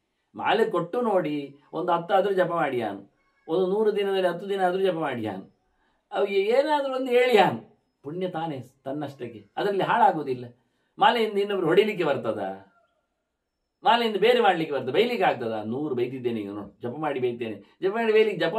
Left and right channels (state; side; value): identical; both; correlation 1.00